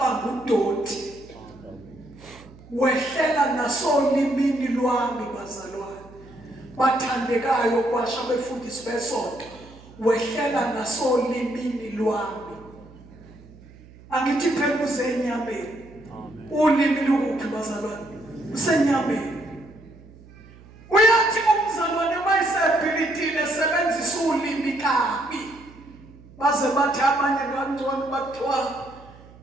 udoti. Wehlela nasolimini lwami bazalwane bathandekayo kwasha befundisi besonto, wehlela nasolimini lwami. Angithi phela uzenyameni. Ulimi lukuphi bazalwane? Usenyameni. Uyathi umzalwane mayisebhilidile sebenzisa ulimi kabi, baze bathi abanye kancane bathiwa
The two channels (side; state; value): right; noise; hum, 22 dB below the sound